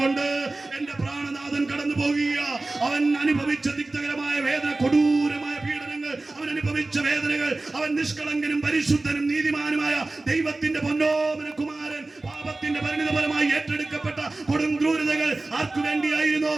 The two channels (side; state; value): left; quieter; 3.1 dB